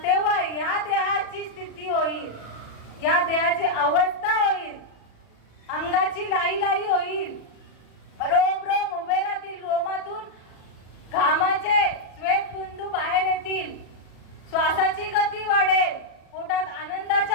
तेव्हा या देहाची स्थिती होईल, या देहाची अवस्था होईल, अंगाची लाई लाई होईल, रोम रोम उभे राहतील, रोमातून घामाचे श्वेतबिंदू बाहेर येतील, श्वासाची गती वाढेल, पोटात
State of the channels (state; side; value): late; right; 37 ms